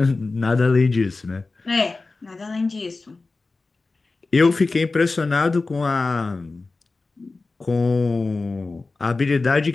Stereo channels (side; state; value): right; quieter; 3.6 dB